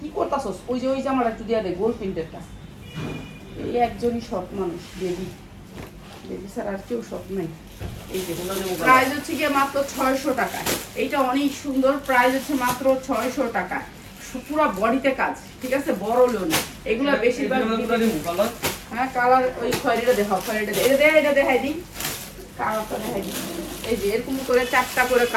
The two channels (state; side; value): identical; both; correlation 1.00